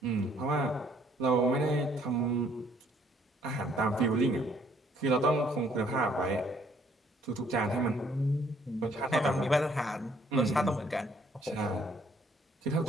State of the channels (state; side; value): normal; both; correlation 0.64